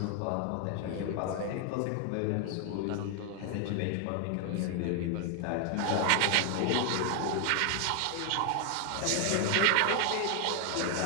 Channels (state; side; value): different; both; correlation 0.00